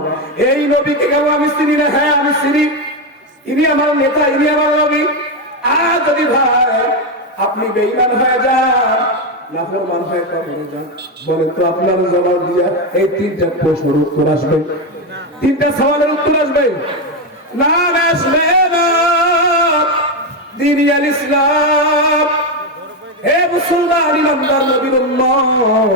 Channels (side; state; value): both; normal; correlation 0.08